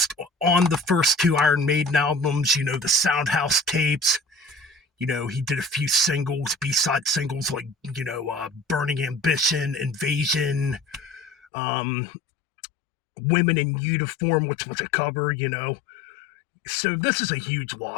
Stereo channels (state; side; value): drops out; right; at 11.5 s